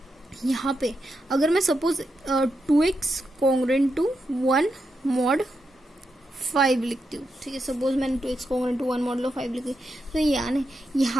यहाँ पे अगर मैं suppose 2x congruent to 1 mod 5 लिखती हूँ। ठीक है, सपोज मैंने 2x कॉन्ग्रुएंट टू 1 मॉडुलो 5 लिखी, तो यानी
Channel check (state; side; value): normal; both; correlation 0.85